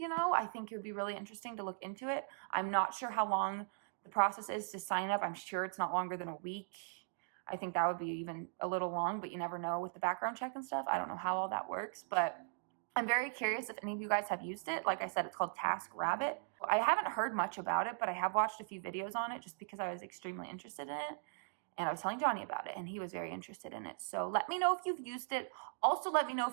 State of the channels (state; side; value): silent; left; digital silence